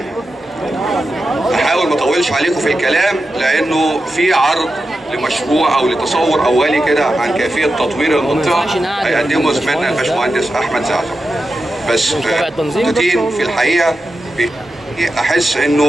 احاول ما اطولش عليكم في الكلام لانه في عرض لمشروع او لتصور اولي كده عن كيفيه تطوير المنطقه هيقدمه زميلنا الباشمهندس احمد زعزع. بس نقطتين في الحقيقه احس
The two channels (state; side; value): normal; both; correlation 0.90